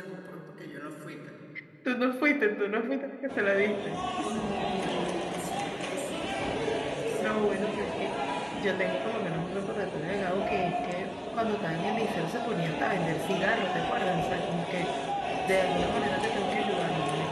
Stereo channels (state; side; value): identical; both; correlation 1.00